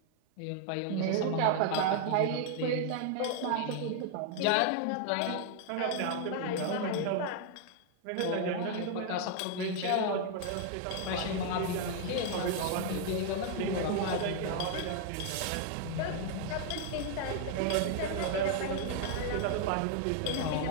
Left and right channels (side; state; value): both; different; correlation 0.00